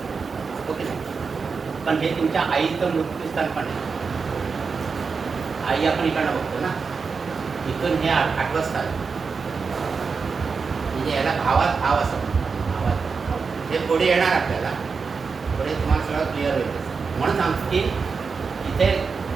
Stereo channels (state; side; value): quieter; left; 5.1 dB